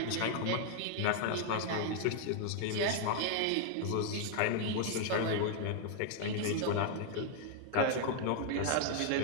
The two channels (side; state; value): both; different; correlation 0.00